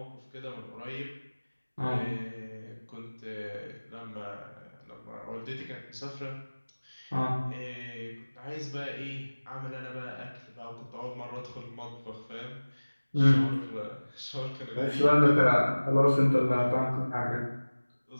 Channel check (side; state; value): both; inverted; correlation -1.00